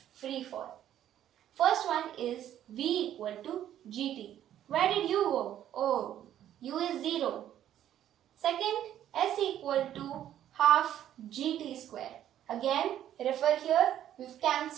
free fall. First one is V equal to GT. Where did U go? Oh, U is 0. Second, S equal to half GT square. Again, refer here, we've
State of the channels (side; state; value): left; quieter; 11.3 dB